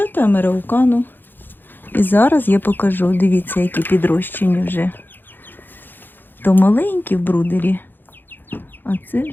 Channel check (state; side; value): late; right; 0.094 ms